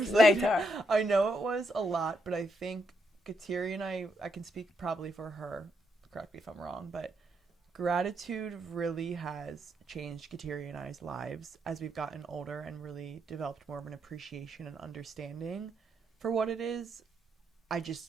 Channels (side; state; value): both; normal; correlation 0.78